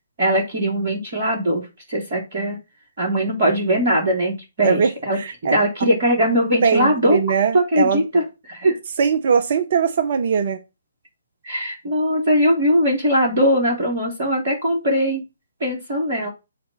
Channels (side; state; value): both; inverted; correlation -0.61